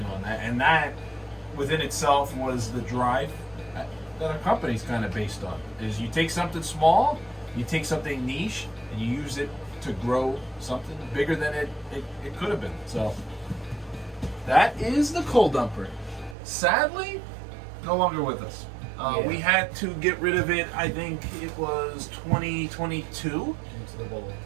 on that. And that, within itself, was the drive that our company's kind of based on. Is you take something small, you take something niche, and you use it to grow something bigger than it could have been. So that is the coal dumper. Sadly, no longer with us. Yeah. We had to get rid of it, I think it was 2022, into the bowl.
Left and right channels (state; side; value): drops out; left; at 16.4 s